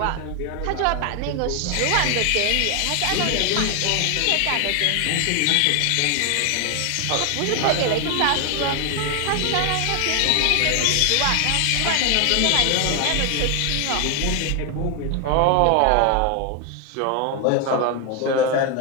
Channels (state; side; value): different; both; correlation 0.01